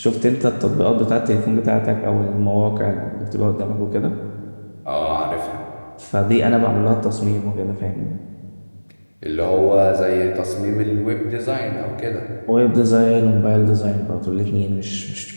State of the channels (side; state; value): both; inverted; correlation -1.00